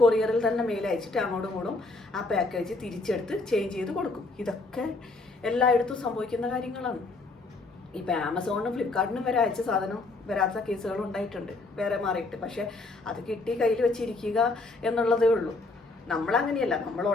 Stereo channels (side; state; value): right; quieter; 3.3 dB